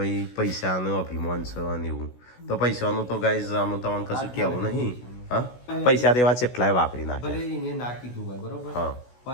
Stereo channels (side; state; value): right; late; 16 ms